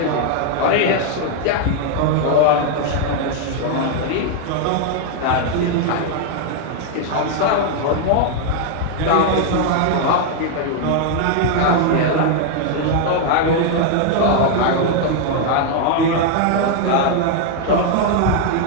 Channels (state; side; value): different; both; correlation 0.00